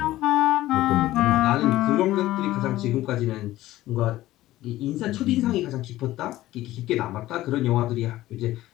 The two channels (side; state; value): right; quieter; 15.7 dB